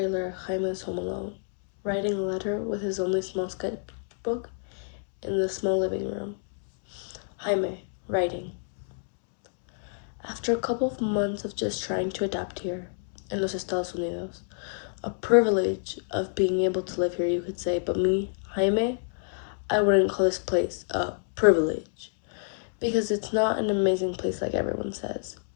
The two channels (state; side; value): silent; right; digital silence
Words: Jaime is home alone, writing a letter with his only small sketchbook in the small living room. Jaime, writing. After a couple of months of just trying to adapt here, in los Estados Unidos, a privilege of being able to live here, you could say, but me, Jaime, I wouldn't call this place a privilege, because it's not an amazing place like everyone says.